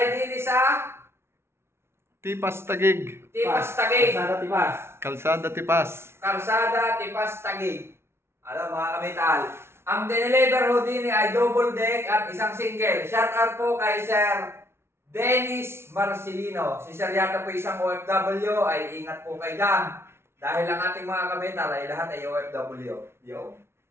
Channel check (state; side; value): late; left; 0.12 ms